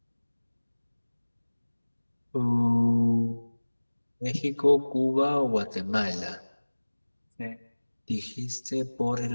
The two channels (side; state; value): both; inverted; correlation -1.00